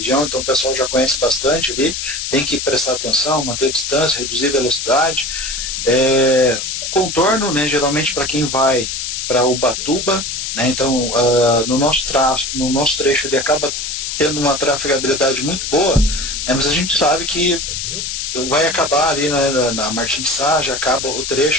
então o pessoal já conhece bastante ali, tem que prestar atenção, manter distância, reduzir velocidade. Contorno, né, geralmente para quem vai para Ubatuba, né, então no nosso trecho ele acaba tendo uma trafegabilidade muito boa, né, mas a gente sabe que vai acabar ali, né, na Martim de Sá, já acaba o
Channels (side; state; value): left; noise; hiss, 4 dB below the sound